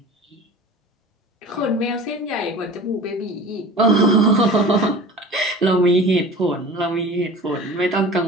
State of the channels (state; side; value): normal; both; correlation 0.38